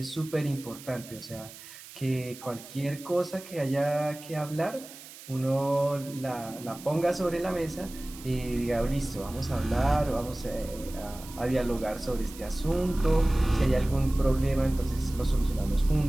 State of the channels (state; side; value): noise; right; hiss, 16 dB below the sound